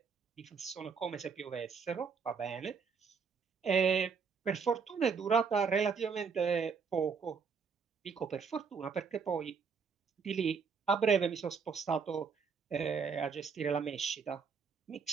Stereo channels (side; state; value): left; quieter; 5.8 dB